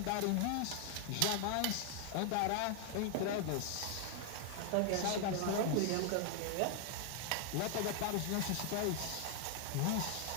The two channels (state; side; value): different; both; correlation 0.00